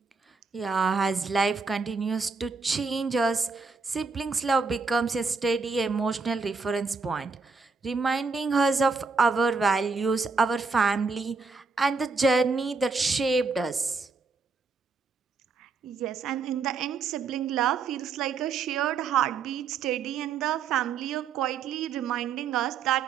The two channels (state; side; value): quieter; left; 4.7 dB